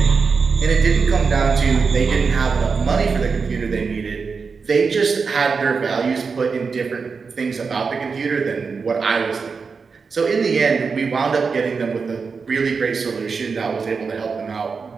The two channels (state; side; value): quieter; left; 5.1 dB